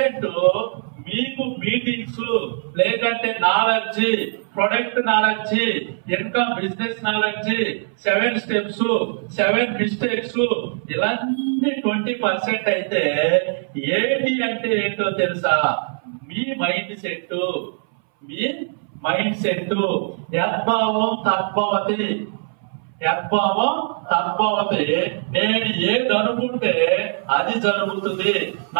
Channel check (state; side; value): silent; left; 62 dB below the other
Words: మీకు మీటింగ్స్ లేదంటే knowledge, product knowledge, income business knowledge, 7 steps, 7 mistakes, ఇలాంటి 20% అయితే 80 అంటే ఏంటో తెలుసా? మీ మైండ్ సెట్. మీ మైండ్ సెట్. యద్భావం తద్భవతి. యద్భావం తద్భవతి. నేను ఏది అనుకుంటే అది జరుగుతుంది.